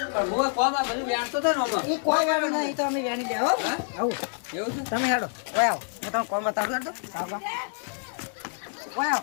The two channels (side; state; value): right; silent; 60 dB below the other